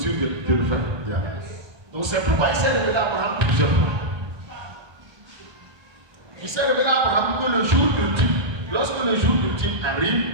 de le faire. Yes. Donc c'est pourquoi il s'est révélé à Abraham plusieurs fois. Il s'est révélé à Abraham que le jour ultime, lorsque le jour ultime arrive,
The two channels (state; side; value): late; left; 1.2 ms